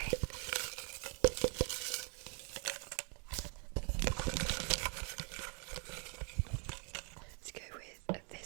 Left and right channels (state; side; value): quieter; left; 36.9 dB